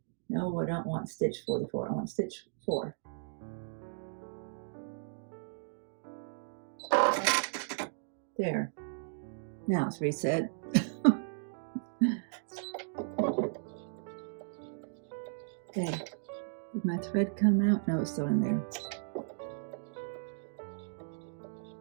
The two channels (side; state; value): left; silent; digital silence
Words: No, I don't want stitch 44. I want stitch 4. There. Now it's reset. Okay. Did my thread come out? No, it's still in there.